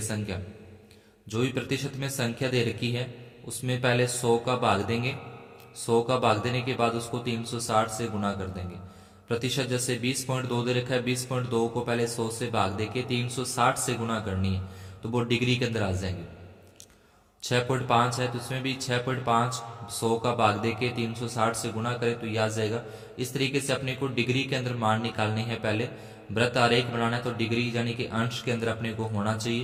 संख्या, जो भी प्रतिशत में संख्या दे रखी है उसमें पहले 100 का भाग देंगे, 100 का भाग देने के बाद उसको 360 से गुना कर देंगे। प्रतिशत जैसे 20.2 दे रखा है, 20.2 को पहले 100 से भाग देके 360 से गुना करनी है, तो वो डिग्री के अंदर आ जाएंगे। 6.5 है तो उसमें भी 6.5 100 का भाग देके 360 से गुना करें तो ये आ जाएगा। इस तरीके से अपने को डिग्री के अंदर मान निकालने हैं। पहले वृत्त आरेख बनाना है तो डिग्री यानी कि अंश के अंदर अपने को होना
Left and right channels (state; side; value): identical; both; correlation 1.00